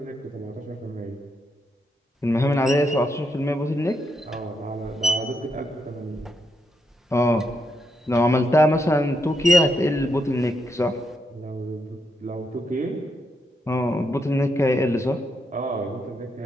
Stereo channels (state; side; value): normal; both; correlation 0.80